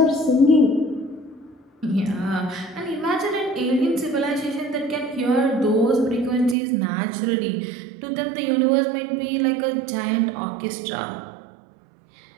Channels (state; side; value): drops out; left; at 6.6 s